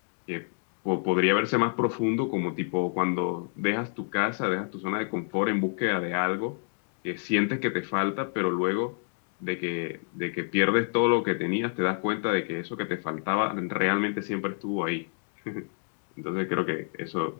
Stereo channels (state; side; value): silent; right; 59 dB below the other